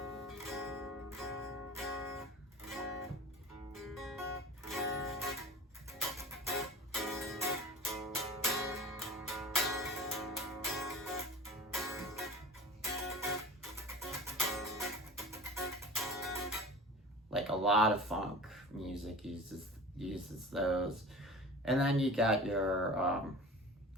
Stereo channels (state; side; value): normal; both; correlation 0.36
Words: Like a lot of funk music uses those. And then you got your